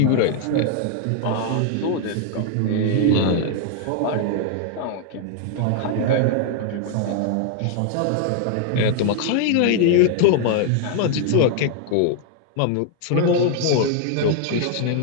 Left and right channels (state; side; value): different; both; correlation 0.00